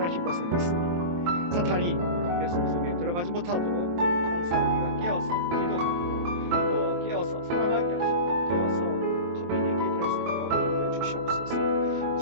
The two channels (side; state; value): left; late; 23 ms